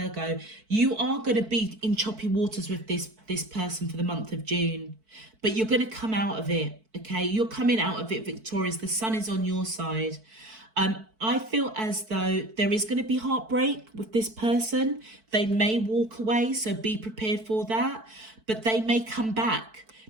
You are going to be in choppy waters with this person for the month of June, but you're going to come out of it, okay? You're coming out of it victorious. The sun is on your side. I feel as though there is going to be heartbreak with this person. They may walk away, so be prepared for that, but they may come back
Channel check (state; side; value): late; left; 4.5 ms